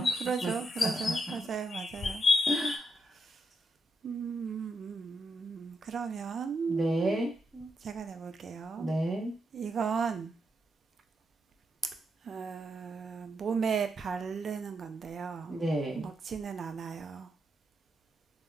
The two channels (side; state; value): both; normal; correlation 0.81